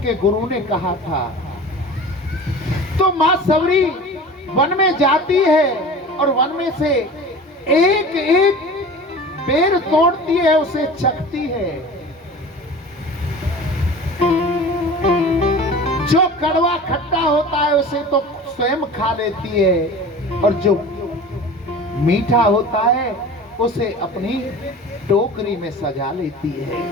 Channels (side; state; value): both; normal; correlation 0.38